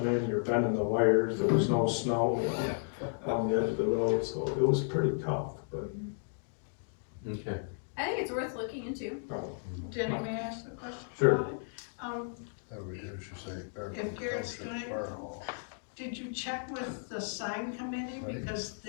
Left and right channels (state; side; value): silent; right; digital silence